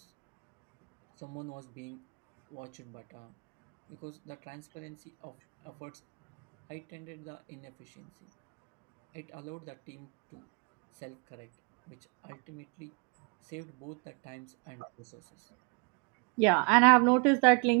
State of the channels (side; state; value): left; quieter; 34.4 dB